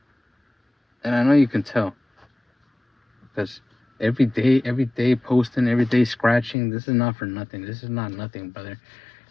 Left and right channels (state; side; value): drops out; right; at 6.6 s